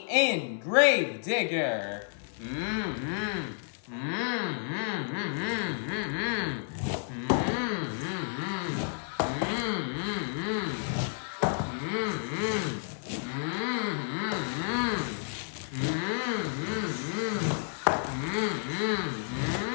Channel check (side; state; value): right; silent; digital silence